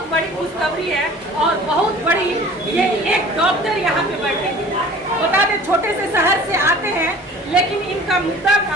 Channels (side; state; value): both; normal; correlation 0.46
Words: बड़ी खुशखबरी है और बहुत बड़ी ये एक डॉक्टर यहाँ पे बैठेंगे। बता दें छोटे से शहर से आते हैं, लेकिन इनका मुद्दा